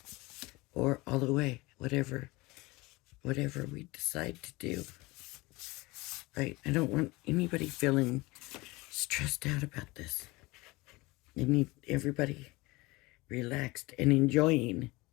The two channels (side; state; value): right; quieter; 22.5 dB